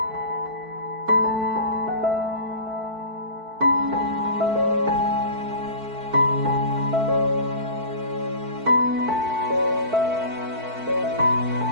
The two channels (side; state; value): left; late; 4.5 ms